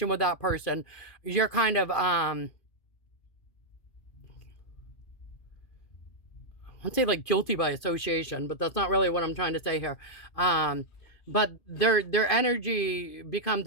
with that person, you're kind of, I'd say like guilty by association, but that's not really what I'm trying to say here. But their energy becomes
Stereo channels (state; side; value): late; right; 2.5 ms